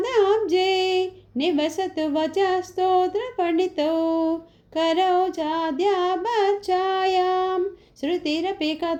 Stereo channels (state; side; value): identical; both; correlation 1.00